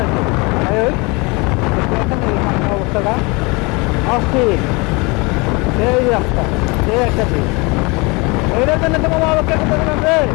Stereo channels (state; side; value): quieter; right; 27.1 dB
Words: তাই ওই এখানে সামনে অবস্থাটা অস্থির, সেই রাস্তা, সেই একটা দিক। এইটার জন্য তো বাবা অপেক্ষা করতেছিলাম রে,